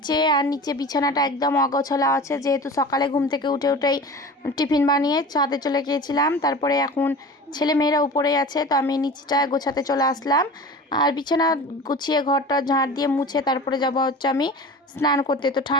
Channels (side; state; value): both; normal; correlation 0.36